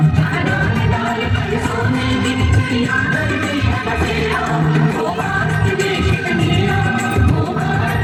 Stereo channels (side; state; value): both; identical; correlation 1.00